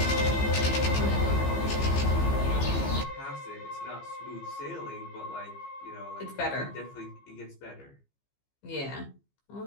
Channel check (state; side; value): late; right; 15 ms